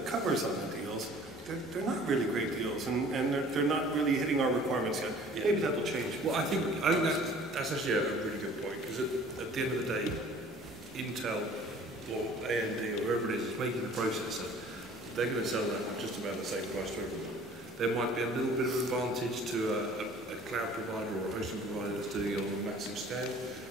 covers on the deals, they're not really great deals, and they're not really hitting our requirements yet. Yeah. Maybe that'll change. Well, I think that's actually a really good point, because at the end of the day, Intel or AMD or whoever it is that's making the processor, they're going to sell that at just about the same price to everyone. There might be a little bit of advantage to a cloud provider or a hosting provider that's doing it on a massive scale,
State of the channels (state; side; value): normal; both; correlation 0.50